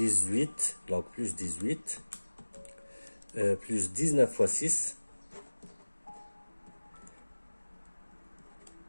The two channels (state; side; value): inverted; both; correlation -1.00